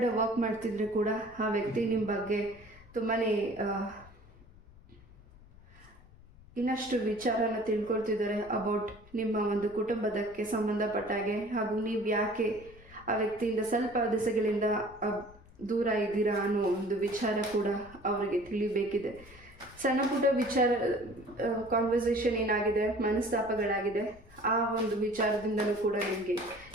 ವರ್ಕ್ ಮಾಡ್ತಿದ್ರೆ ಕೂಡ ಆ ವ್ಯಕ್ತಿ ನಿಮ್ಮ ಬಗ್ಗೆ ತುಂಬಾ ಇನ್ನಷ್ಟು ವಿಚಾರನ ತಿಳ್ಕೊಳ್ತಿದ್ದಾರೆ ಅಬೌಟ್ ನಿಮ್ಮ ಒಂದು ಕುಟುಂಬದಕ್ಕೆ ಸಂಬಂಧಪಟ್ಟಾಗೆ. ಹಾಗೂ ನೀವು ಯಾಕೆ ಆ ವ್ಯಕ್ತಿಯಿಂದ ಸ್ವಲ್ಪ ದಿಸೆಗಳಿಂದ ದೂರ ಇದ್ದೀರಾ ಅನ್ನೋ ಒಂದು ವಿಚಾರ ಕೂಡ ಅವರಿಗೆ ತಿಳಿಬೇಕಿದೆ. ಸಣ್ಣ ಪುಟ್ಟ ವಿಚಾರ ಕಾನ್ವರ್ಸೇಷನ್ ಏನಾಗಿದೆ, ಮನಸ್ತಾಪಗಳಾಗಿದೆ, ಆ ಒಂದು ವಿಚಾರದಿಂದಲೂ ಕೂಡ ನಿಮಗೆ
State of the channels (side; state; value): left; noise; rumble, 23 dB below the sound